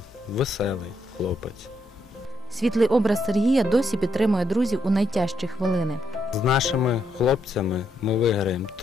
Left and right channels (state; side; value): normal; both; correlation 0.77